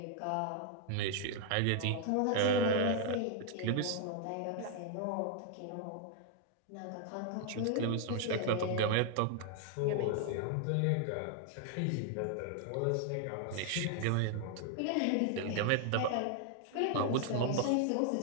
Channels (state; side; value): different; both; correlation 0.00